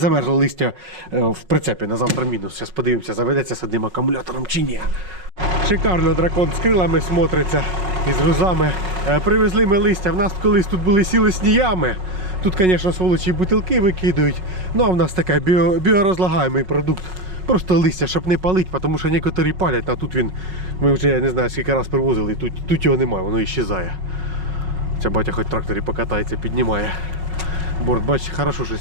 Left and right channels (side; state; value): left; late; 5.4 ms